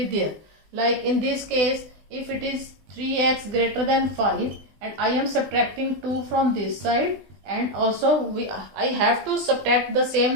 there. Like in this case, if it is 3x greater than 5 and I am subtracting 2 from this side and also I have to subtract the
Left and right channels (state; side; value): late; left; 20 ms